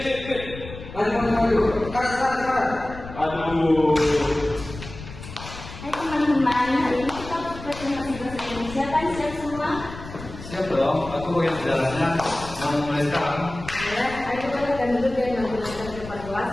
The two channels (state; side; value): noise; left; rumble, 13 dB below the sound